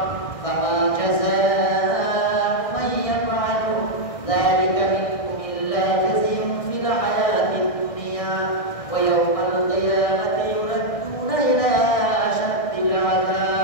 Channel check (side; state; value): right; late; 1.6 ms